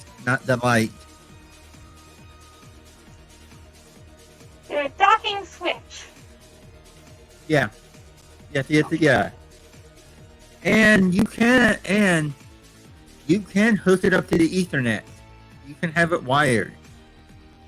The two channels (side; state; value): both; identical; correlation 1.00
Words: not the light. The docking Switch. Yeah, you have to get the and you can hook it up to the Ethernet. You can have it wired.